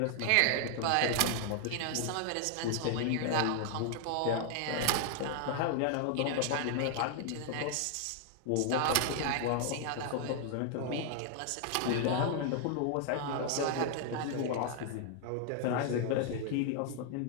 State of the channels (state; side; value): different; both; correlation 0.00